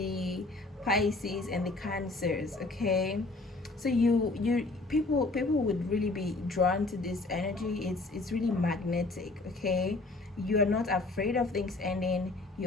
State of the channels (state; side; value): quieter; right; 3.2 dB